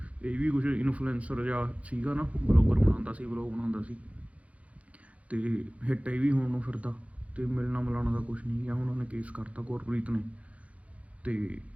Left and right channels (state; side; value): late; left; 0.065 ms